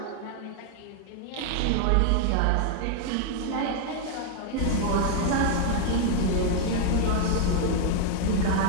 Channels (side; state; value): both; different; correlation 0.00